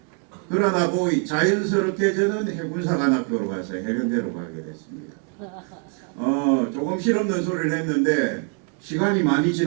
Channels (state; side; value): quieter; left; 39.8 dB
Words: 그러다 보니 자연스럽게 저는 해군사관학교로 가서 해병대로 가게 됐습니다. 조금 실없는 소리를 했는데 시간이 많이